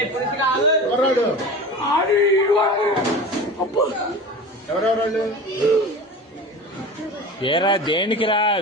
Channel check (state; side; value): normal; both; correlation 0.33